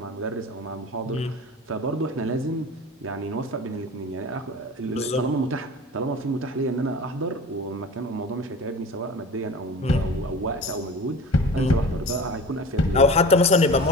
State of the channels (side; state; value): both; normal; correlation 0.37